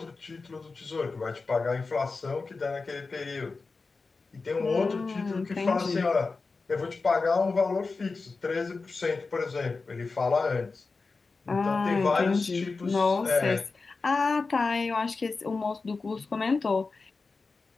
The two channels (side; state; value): right; quieter; 4.1 dB